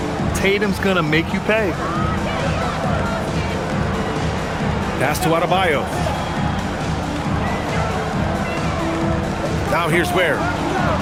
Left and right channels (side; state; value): both; identical; correlation 1.00